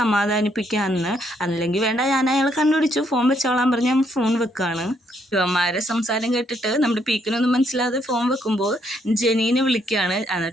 അല്ലെങ്കിൽ വേണ്ട, ഞാൻ അയാളെ കണ്ടുപിടിച്ചു, ഫോൺ വെച്ചോളാൻ പറഞ്ഞ് ഞാൻ ഫോൺ വെക്കുകയാണ്. ഇവന്മാരെ സംസാരം കേട്ടിട്ട് നമ്മുടെ പീക്കിനൊന്നും മനസ്സിലാതെ ഫോൺ വെക്കുമ്പോൾ ജെനീനെ വിളിക്കുകയാണ്.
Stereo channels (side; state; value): both; normal; correlation 0.72